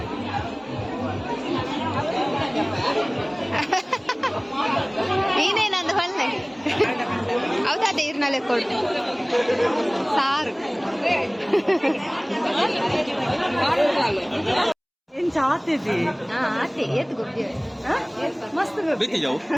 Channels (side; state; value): both; identical; correlation 1.00